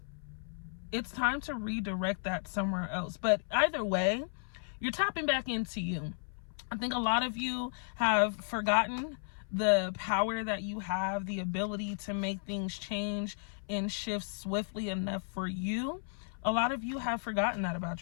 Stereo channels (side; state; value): right; silent; 55 dB below the other